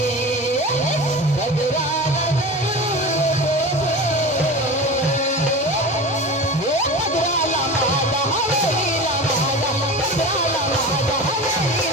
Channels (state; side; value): normal; both; correlation 0.31